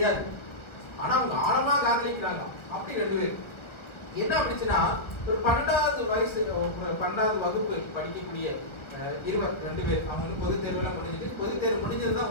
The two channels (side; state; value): right; late; 1.6 ms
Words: ஆனா அவங்க ஆழமா காதலிக்கிறாங்க. அப்படி 2 பேர் என்ன அப்படிச்சுன்னா, ஒரு 12வது வயசு, 12வது வகுப்பு படிக்கக்கூடிய 2 பேர். அவங்க வந்து பொது தேர்வுலாம் முடிஞ்சது. பொது தேர்வு முடிஞ்சதுதான்